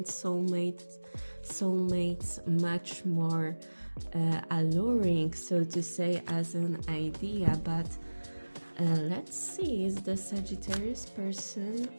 soulmates much more alluring, so to say, as an idea. But let's see, is the Sagittarius person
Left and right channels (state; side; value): inverted; both; correlation -1.00